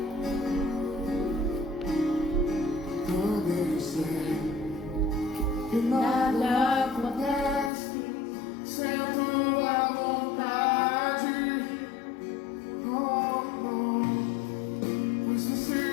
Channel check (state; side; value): drops out; right; at 7.7 s